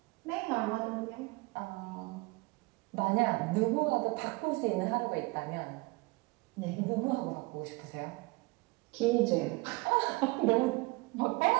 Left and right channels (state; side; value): quieter; left; 24.6 dB